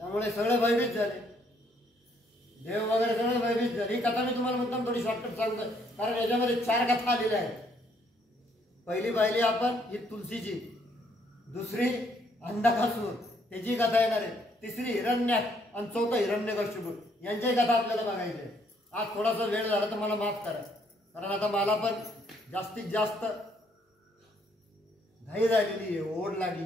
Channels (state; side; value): normal; both; correlation 0.68